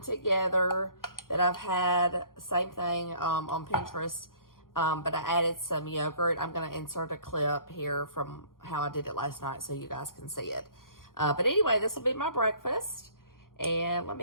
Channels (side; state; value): right; late; 0.91 ms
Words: that I've had, same thing on Pinterest, but I added some yogurt. I'm going to insert a clip here from how I did it last night so you guys can see it. But anyway, this will be my breakfast. And let